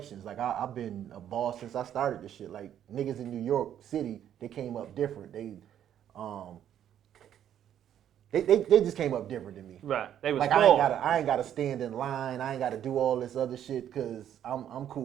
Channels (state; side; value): quieter; left; 10.2 dB